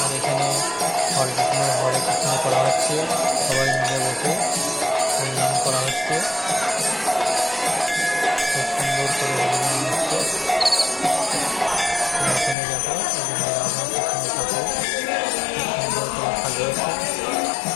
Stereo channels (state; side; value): drops out; right; at 12.6 s